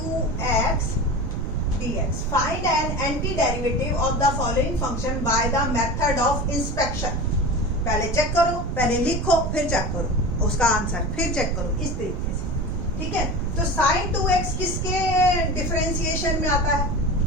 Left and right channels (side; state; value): right; noise; rumble, 5 dB below the sound